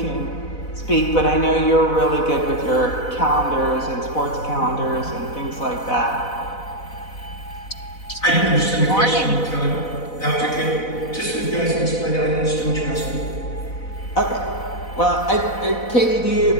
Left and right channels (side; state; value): right; late; 4.0 ms